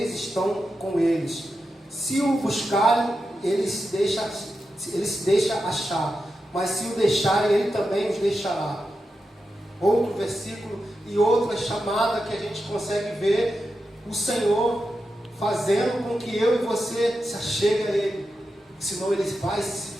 estão com eles. Se o buscarem, ele se deixa achar, mas se o deixarem, ele também os deixará. Outro versículo e outra chamada que a gente consegue ver o Senhor fazendo com que eu e você se achegue a Ele. Senão Ele vai se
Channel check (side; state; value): both; normal; correlation 0.89